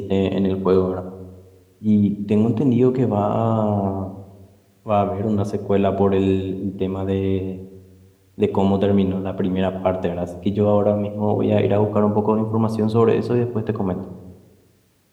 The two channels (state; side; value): identical; both; correlation 1.00